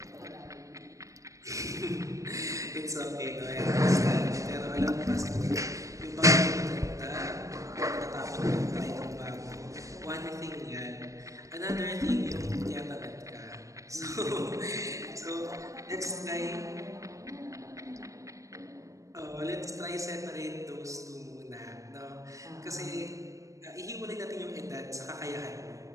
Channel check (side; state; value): left; late; 0.16 ms